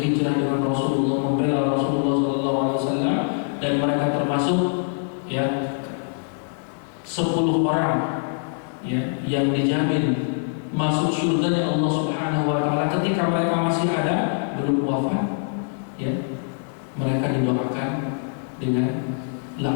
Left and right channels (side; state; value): right; silent; 63 dB below the other